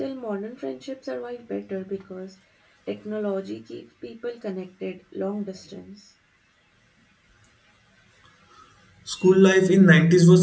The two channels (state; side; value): identical; both; correlation 1.00